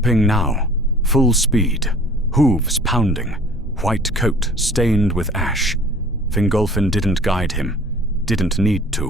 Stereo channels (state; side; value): normal; both; correlation 0.48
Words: now, full speed, hooves pounding, white coat stained with ash. Fingolfin didn't guide him, didn't need